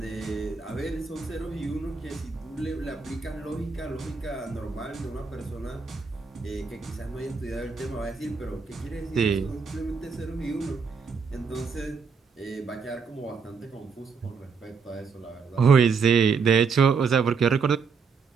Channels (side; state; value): left; quieter; 5.4 dB